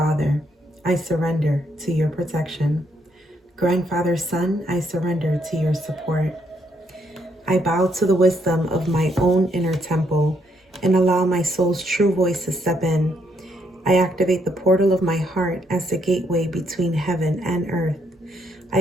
I surrender to your protection. Grandfather Sun, I surrender to your support. I bow to the wisdom of my own inner temple and allow my soul's true voice to step in. I activate the portal of my heart as the gateway between heaven and earth. I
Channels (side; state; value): both; normal; correlation 0.74